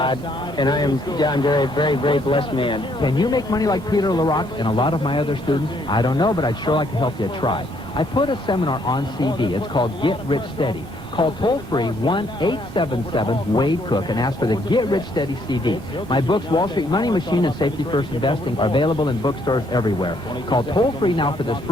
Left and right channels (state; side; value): normal; both; correlation 0.69